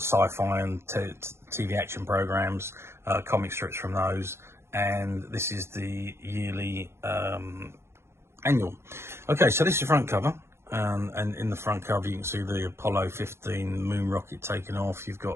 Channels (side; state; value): left; late; 0.12 ms